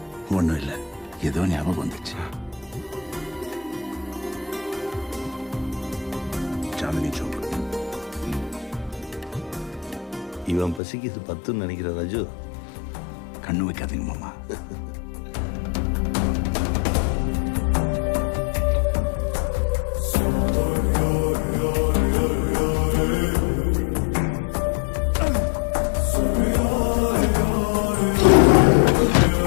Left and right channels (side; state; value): right; drops out; at 10.8 s